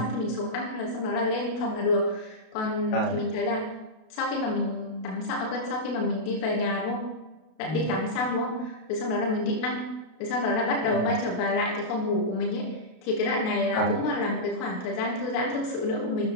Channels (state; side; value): late; right; 32 ms